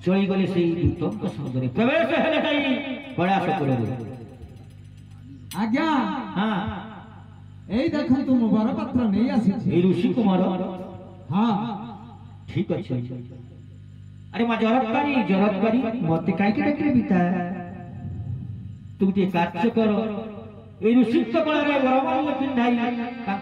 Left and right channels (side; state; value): both; identical; correlation 1.00